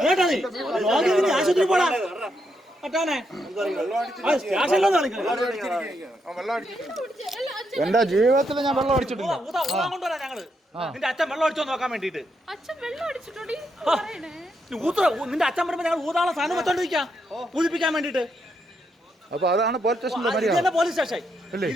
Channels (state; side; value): normal; both; correlation 0.80